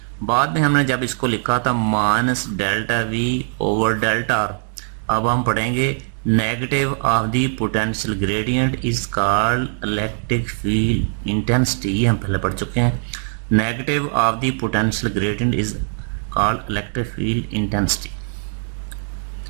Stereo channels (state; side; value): silent; left; 65 dB below the other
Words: बाद में हमने जब इसको लिखा था minus delta V over delta R, अब हम पढ़ेंगे negative of the potential gradient is called electric field intensity. ये हम पहले पढ़ चुके हैं। Negative of the potential gradient is called electric field intensity.